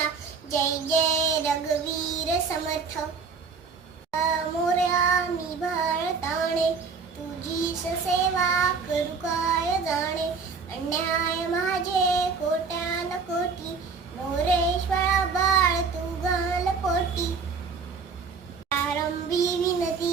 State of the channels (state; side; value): quieter; left; 5.2 dB